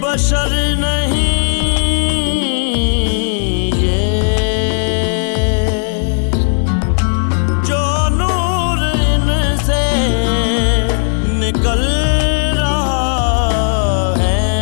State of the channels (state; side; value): silent; right; digital silence